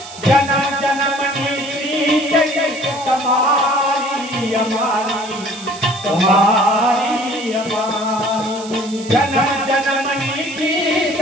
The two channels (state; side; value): noise; right; hiss, 15 dB below the sound